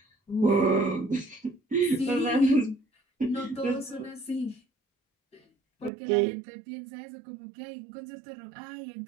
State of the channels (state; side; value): drops out; left; at 5.9 s